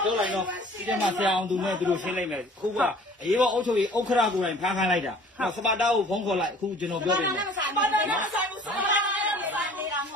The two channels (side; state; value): both; normal; correlation 0.50